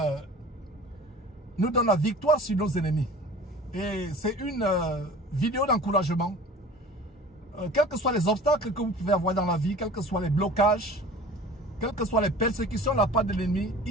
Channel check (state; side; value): normal; both; correlation 0.42